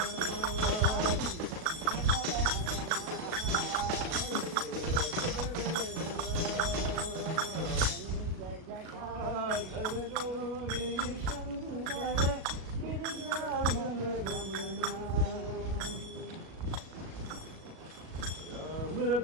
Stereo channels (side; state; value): left; late; 38 ms